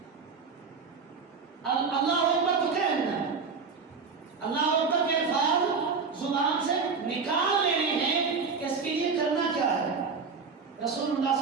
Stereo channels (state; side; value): quieter; left; 5.1 dB